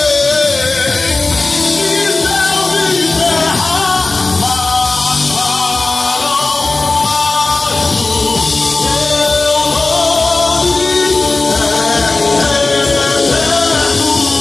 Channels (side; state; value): right; quieter; 3.4 dB